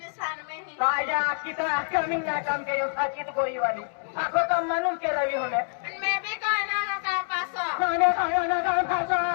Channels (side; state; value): right; silent; digital silence